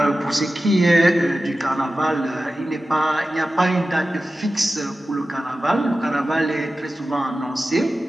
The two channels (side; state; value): both; normal; correlation 0.94